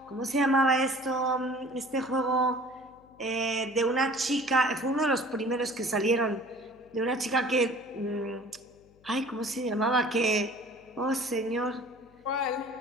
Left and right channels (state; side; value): noise; left; hum, 28 dB below the sound